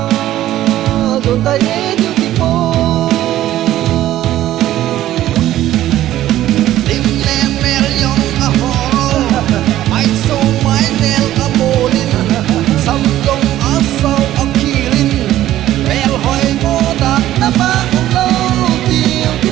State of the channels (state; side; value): quieter; left; 13.6 dB